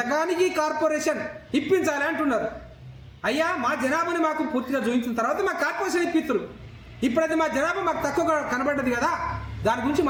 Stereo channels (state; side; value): identical; both; correlation 1.00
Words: కార్పొరేషన్ ఇప్పించాలి అంటున్నారు. అయ్యా, మా జనాభాని మాకు పూర్తిగా చూపించిన తర్వాత మా కార్పొరేషన్ ఇప్పిస్తారు. ఇప్పుడైతే మా జనాభా మాకు తక్కువగా కనబడ్డది కదా, దాని గురించి